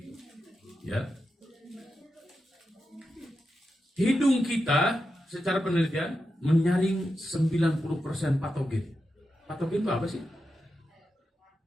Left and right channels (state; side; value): normal; both; correlation 0.88